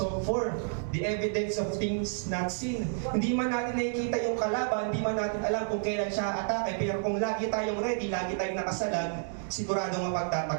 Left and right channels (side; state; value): left; silent; digital silence